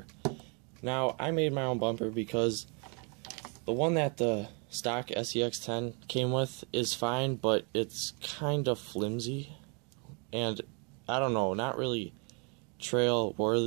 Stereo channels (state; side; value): quieter; left; 35.5 dB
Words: Now, I made my own bumper because the one that the stock SCX10 came with is fine, but it's kind of flimsy, and I don't know, not really trail